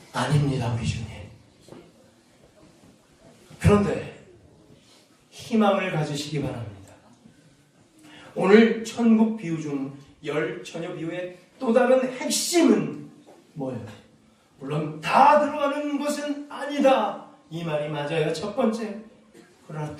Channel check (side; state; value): both; identical; correlation 1.00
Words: 아닙니다, 우리 주님. 그런데 희망을 가지시기 바랍니다. 오늘 천국 비유 중 열 처녀 비유의 또 다른 핵심은 뭐예요? 물론 다 들어가는 것은 아니다, 이 말이 맞아요, 첫 번째. 그러나